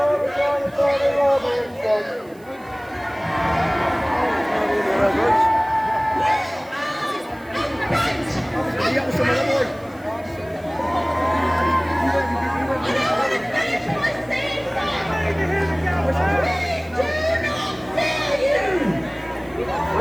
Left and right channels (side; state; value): right; noise; hiss, 28 dB below the sound